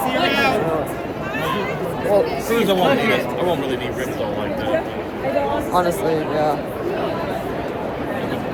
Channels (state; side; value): identical; both; correlation 1.00